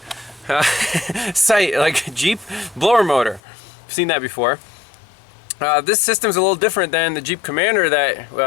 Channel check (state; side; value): drops out; right; at 3.4 s